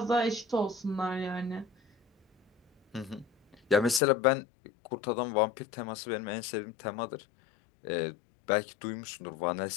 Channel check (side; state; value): right; drops out; at 4.0 s